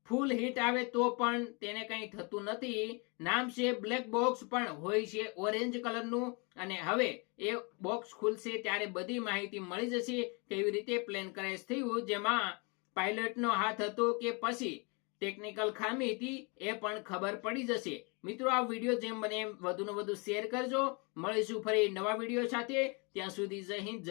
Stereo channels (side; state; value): right; quieter; 31.7 dB